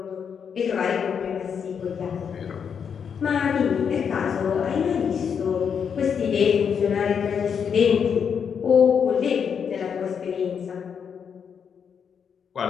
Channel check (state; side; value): quieter; right; 7.1 dB